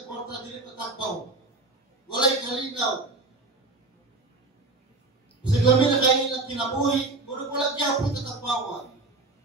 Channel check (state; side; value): quieter; left; 3.3 dB